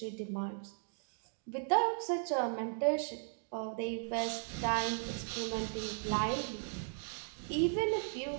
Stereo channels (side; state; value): left; silent; 53 dB below the other